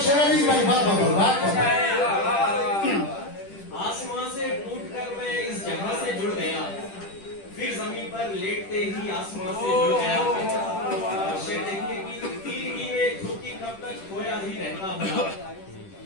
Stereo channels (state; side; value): late; right; 10 ms